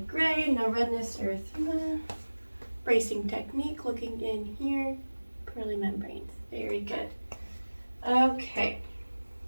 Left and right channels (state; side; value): inverted; both; correlation -1.00